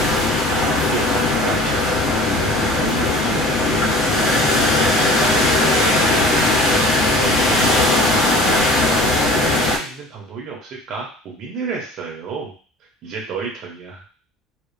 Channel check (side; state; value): both; normal; correlation 0.43